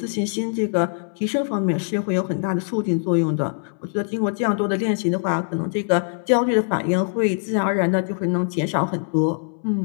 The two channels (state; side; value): silent; right; 64 dB below the other